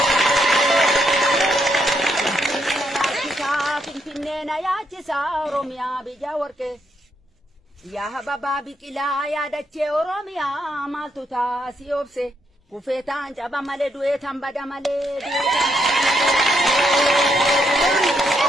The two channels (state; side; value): normal; both; correlation 0.77